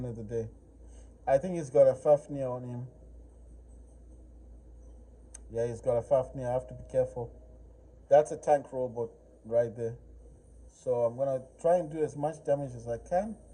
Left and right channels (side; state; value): both; identical; correlation 1.00